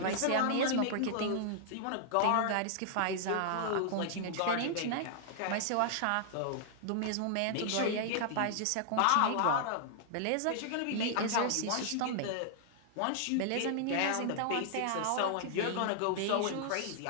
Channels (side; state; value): both; different; correlation -0.01